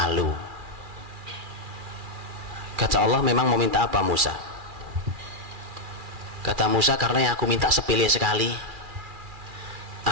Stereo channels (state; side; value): late; left; 2.4 ms